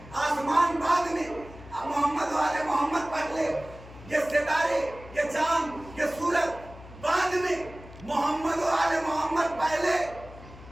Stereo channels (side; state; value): left; noise; hum, 18 dB below the sound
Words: आसमान बाद में, मोहम्मद वाले मोहम्मद पहले, ये सितारे, ये चांद, ये सूरज बाद में, मोहम्मद वाले मोहम्मद पहले।